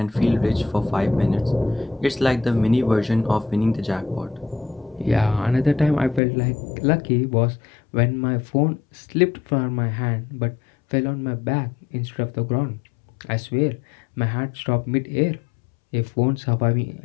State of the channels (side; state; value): right; drops out; at 6.2 s